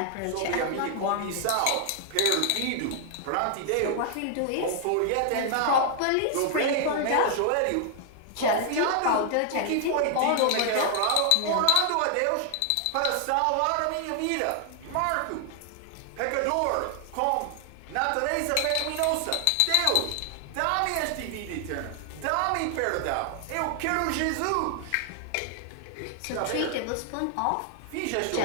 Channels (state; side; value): different; both; correlation 0.00